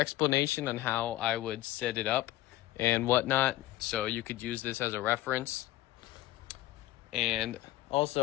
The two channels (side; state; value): right; quieter; 16.2 dB